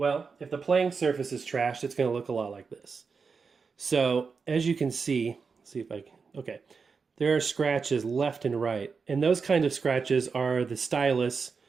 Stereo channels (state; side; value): quieter; left; 5.2 dB